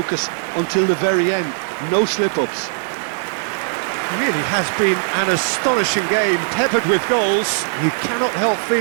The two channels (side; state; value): left; silent; 63 dB below the other